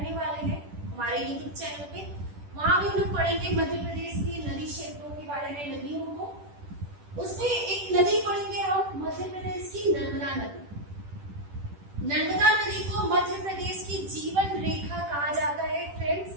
वाले हैं हमारे यूट्यूब चैनल पे। वहां भी हम लोग पढ़ेंगे मध्य प्रदेश की नदी क्षेत्रों के बारे में, नदियों को। उसमें एक नदी पढ़ेंगे हम मध्य प्रदेश की नर्मदा नदी। नर्मदा नदी को मध्य प्रदेश की जीवन रेखा कहा जाता है फ्रेंड्स,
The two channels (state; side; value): late; left; 10 ms